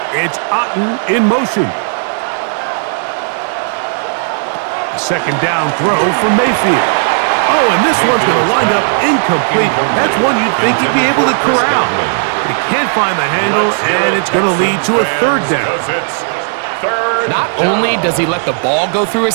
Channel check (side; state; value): left; silent; digital silence